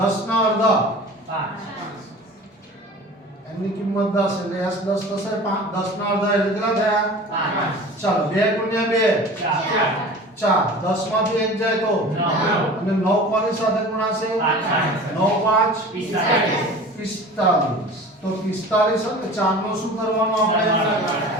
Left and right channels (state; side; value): normal; both; correlation 0.39